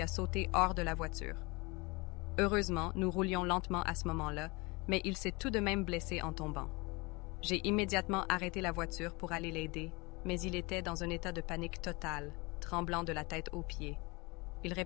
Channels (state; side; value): quieter; right; 26.2 dB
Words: a sauté hors de la voiture. Heureusement, nous roulions lentement à ce moment-là, mais il s'est tout de même blessé en tombant. J'ai immédiatement arrêté la voiture pour aller l'aider, mais il était dans un état de panique totale, tremblant de la tête aux pieds. Il